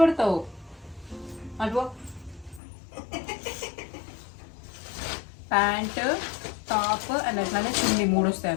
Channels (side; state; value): right; drops out; at 2.6 s